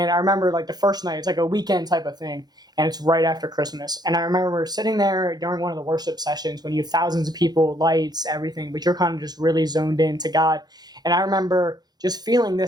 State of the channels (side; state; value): left; late; 0.19 ms